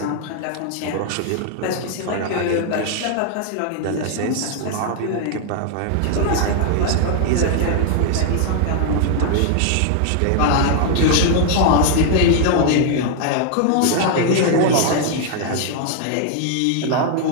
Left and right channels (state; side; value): different; both; correlation 0.00